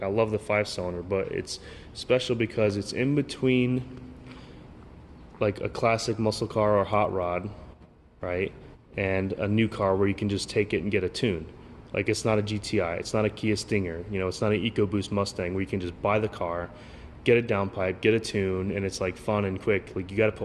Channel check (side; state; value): both; identical; correlation 1.00